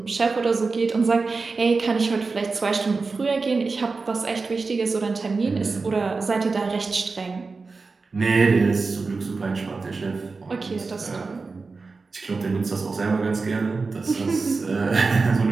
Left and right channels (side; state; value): left; quieter; 4.2 dB